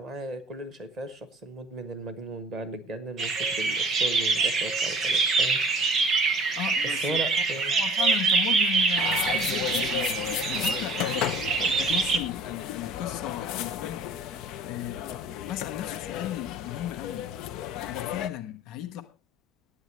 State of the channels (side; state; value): both; normal; correlation 0.49